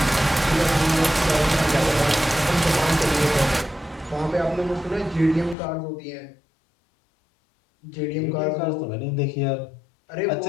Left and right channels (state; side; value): drops out; right; at 5.6 s